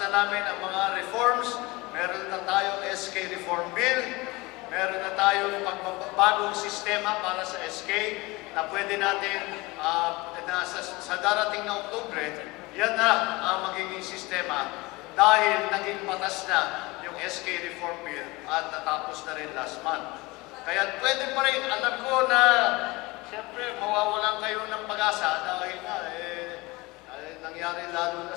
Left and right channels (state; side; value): quieter; right; 22.9 dB